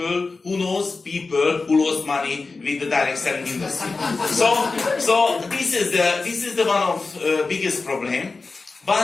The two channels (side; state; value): right; quieter; 3.9 dB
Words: people who lost money with the direct selling industry. So this is the one of biggest problem.